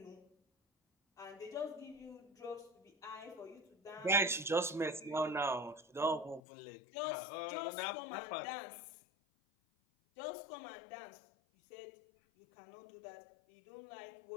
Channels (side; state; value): right; drops out; at 6.4 s